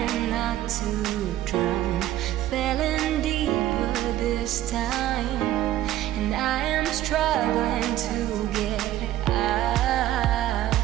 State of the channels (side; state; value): left; quieter; 13.7 dB